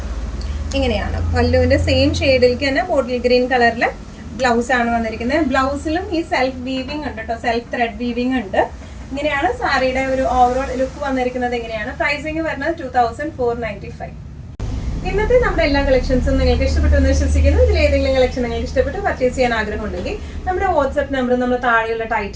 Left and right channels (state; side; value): identical; both; correlation 1.00